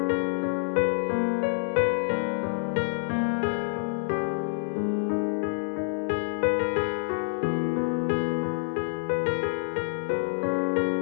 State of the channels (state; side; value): silent; right; digital silence